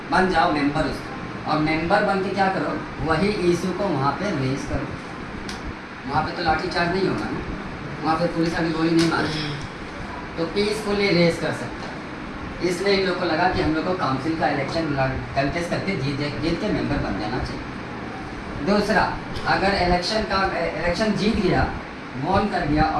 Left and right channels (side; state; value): both; identical; correlation 1.00